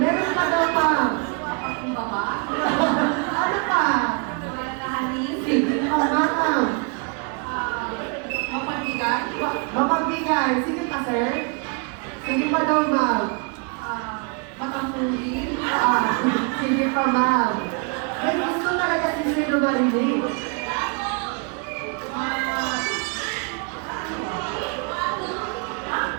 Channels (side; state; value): left; quieter; 36.2 dB